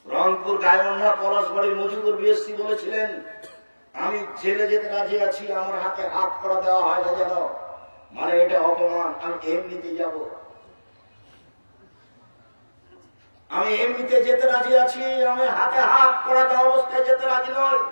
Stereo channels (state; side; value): inverted; both; correlation -1.00